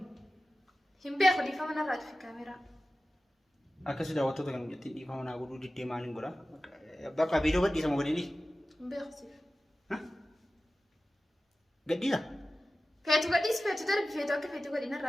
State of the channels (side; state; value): both; normal; correlation 0.95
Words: إمبي أخو دي فما أنا راتي في كاميرا أكسر عطوتك أنا جت دي فم أنا أقول دي تيمانين برا بقى فيديو بدي سامو بدي إمبي أخو سيف ها قدي لا فيتو قديس فيتو ترى فيتو أكيد فيتو قدينا